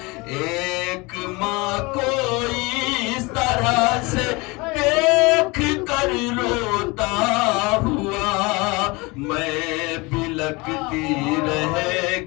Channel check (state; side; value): quieter; right; 25.4 dB